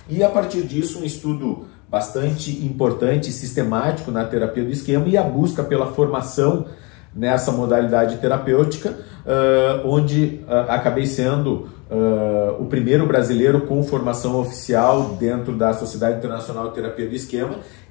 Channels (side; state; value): right; quieter; 29.2 dB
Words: E a partir disso, um estudo bastante importante e sistemático na terapia do esquema e a busca pela formação nessa modalidade terapêutica, onde acabei sendo o primeiro brasileiro com formação oficial dentro da Sociedade Internacional de Terapia do Esquema